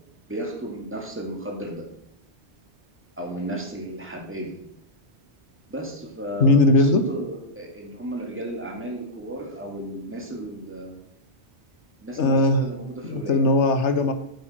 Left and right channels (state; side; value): normal; both; correlation -0.09